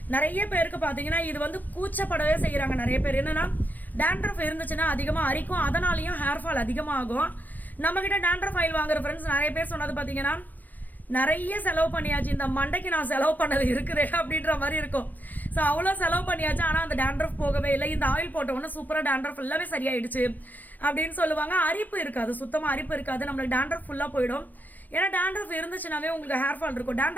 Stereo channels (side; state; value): right; late; 0.083 ms